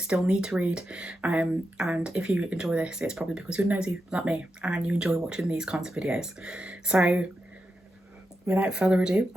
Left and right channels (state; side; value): normal; both; correlation 0.87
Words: need to read, and if you enjoy this, it's probably because you're nosy like me and you enjoy watching these kinds of videos. So without further ado,